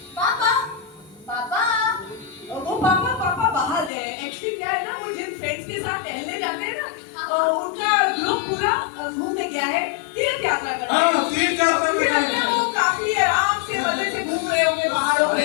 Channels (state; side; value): drops out; right; at 3.9 s